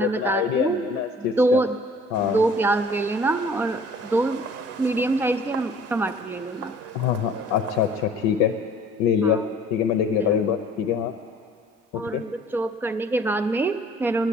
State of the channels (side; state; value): both; normal; correlation 0.51